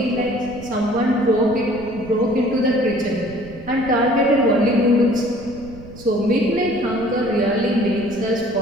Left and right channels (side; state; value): right; noise; rumble, 17 dB below the sound